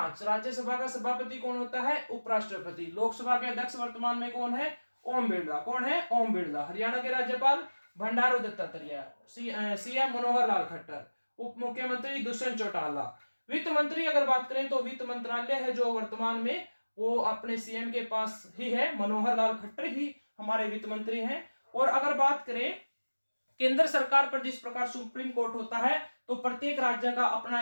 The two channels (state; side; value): inverted; both; correlation -1.00